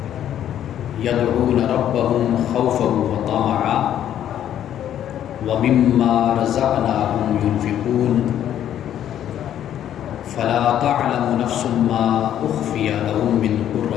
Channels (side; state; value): right; quieter; 10.7 dB